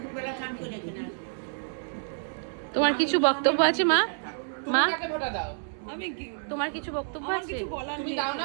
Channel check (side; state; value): left; silent; digital silence